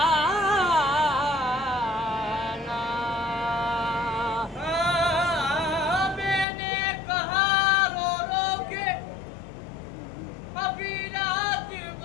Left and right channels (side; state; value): right; drops out; at 6.5 s